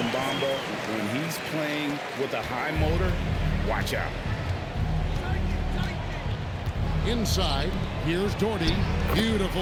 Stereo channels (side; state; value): both; identical; correlation 1.00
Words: Bamba when he's playing with a high motor, watch out. Inside, here's Doherty. Beautiful